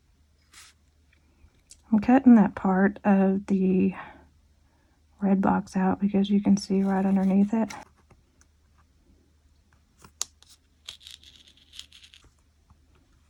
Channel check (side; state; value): both; identical; correlation 1.00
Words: I'm cutting that part of the red box out because you can see right underneath it.